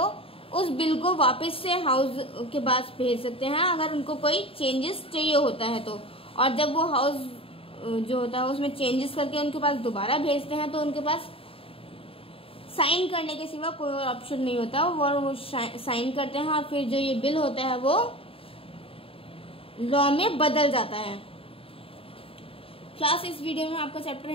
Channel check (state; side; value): late; right; 0.27 ms